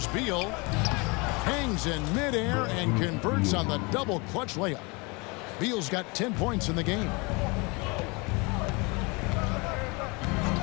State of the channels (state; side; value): quieter; right; 28.2 dB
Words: Beal. Hangs in midair and converts on the double clutch layup. Beal's got 10 points in the game.